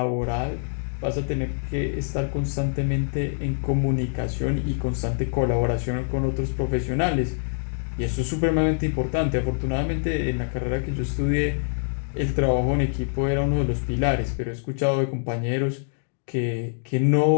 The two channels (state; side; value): silent; right; digital silence